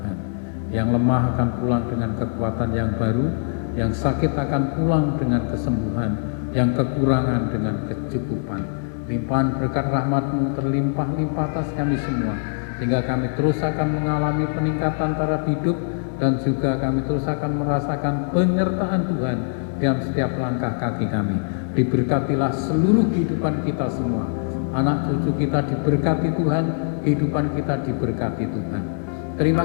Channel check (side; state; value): right; silent; digital silence